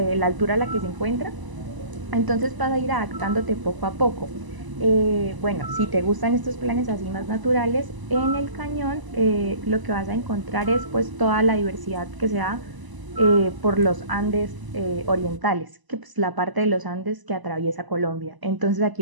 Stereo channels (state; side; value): late; left; 1.0 ms